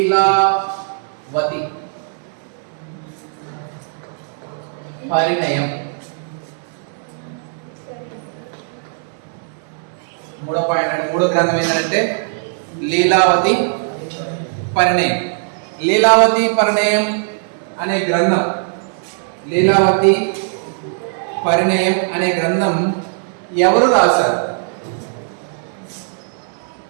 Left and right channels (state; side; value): silent; left; digital silence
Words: పరిణయం. మూడో పాయింట్ అంటే మూడో గ్రంథం ఏంటంటే లీలావతి పరిణయం. లీలావతి పరిణయం అనే గ్రంథం, లీలావతి పరిణయం అనే గ్రంథం ఎవరు రాశారు?